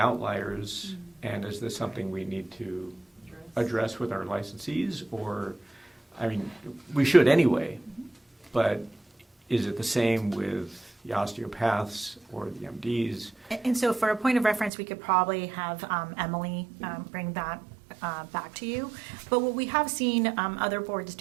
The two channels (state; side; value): drops out; left; at 14.7 s